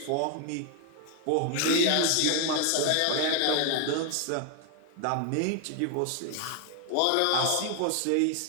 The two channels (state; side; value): different; both; correlation 0.00